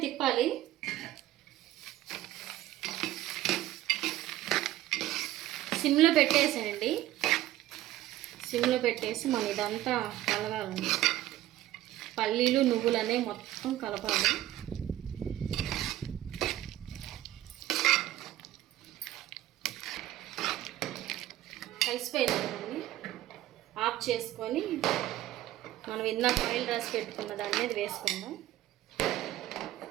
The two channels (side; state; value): left; quieter; 14.4 dB